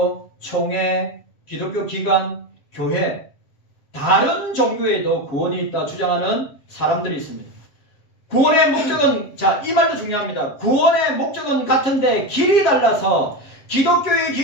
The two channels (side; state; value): right; late; 7.7 ms